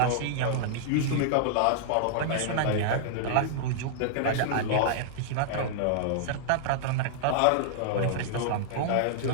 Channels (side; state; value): both; different; correlation -0.01